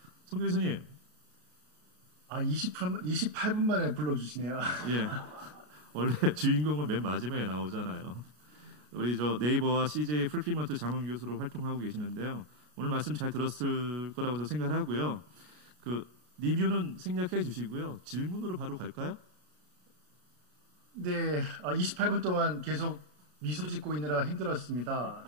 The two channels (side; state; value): left; late; 33 ms